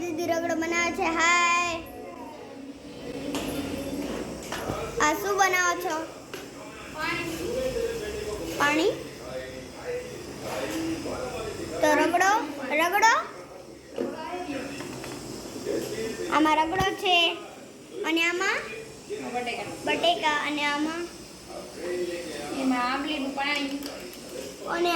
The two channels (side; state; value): both; identical; correlation 1.00